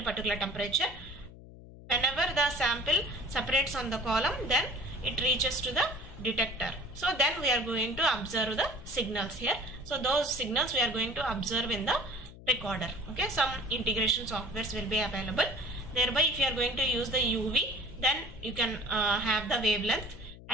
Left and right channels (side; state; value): left; noise; hum, 17 dB below the sound